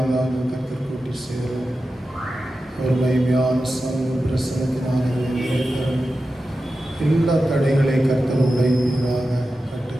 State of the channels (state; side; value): normal; both; correlation 0.92